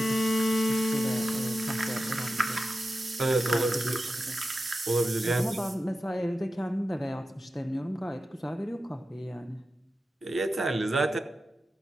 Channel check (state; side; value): normal; both; correlation 0.92